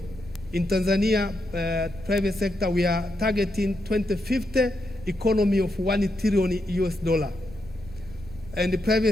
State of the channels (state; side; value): noise; left; rumble, 19 dB below the sound